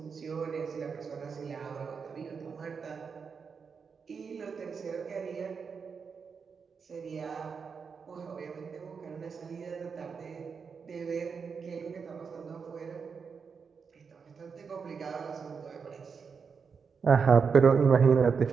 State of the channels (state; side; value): quieter; left; 5.8 dB